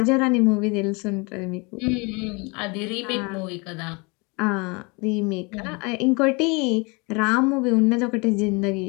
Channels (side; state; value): right; quieter; 29.3 dB